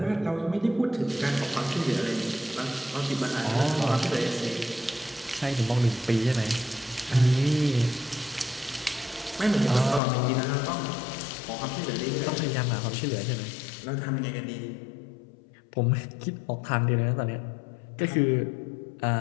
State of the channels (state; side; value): drops out; right; at 10.0 s